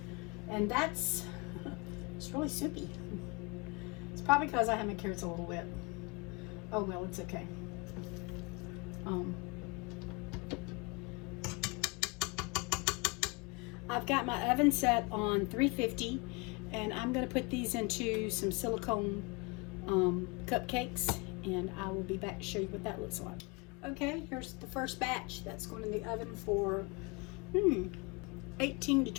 And that's, it's really soupy. It's probably because I have my carrots a little wet. Oh well, it's okay. I've got my oven set on 350, and I'm going to put these into some silicone cupcakes, and I will be back to show you what that looks like. Okay, here's the first batch that's going in the oven for 18 to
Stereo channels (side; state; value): right; quieter; 27.6 dB